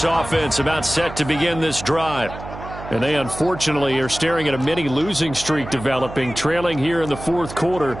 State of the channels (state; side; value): noise; right; hum, 12 dB below the sound